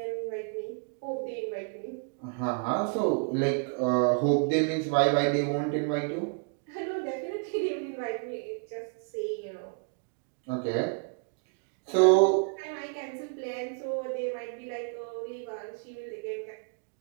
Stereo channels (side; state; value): left; quieter; 39.5 dB